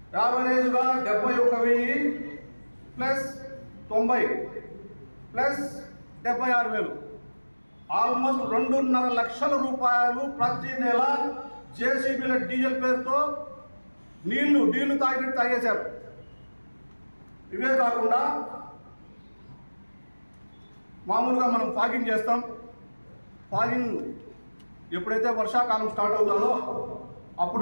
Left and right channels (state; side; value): inverted; both; correlation -1.00